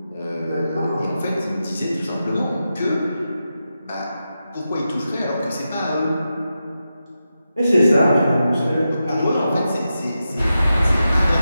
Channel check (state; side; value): inverted; both; correlation -0.89